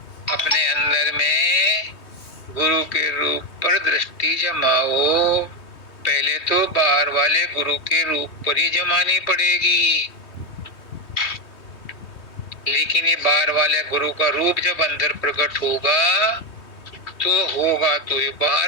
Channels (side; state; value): right; late; 3.2 ms